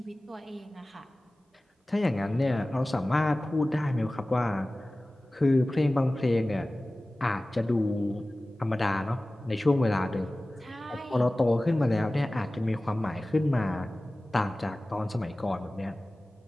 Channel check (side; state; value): both; normal; correlation 0.97